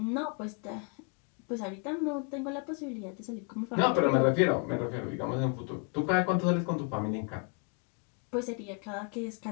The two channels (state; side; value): quieter; right; 35.8 dB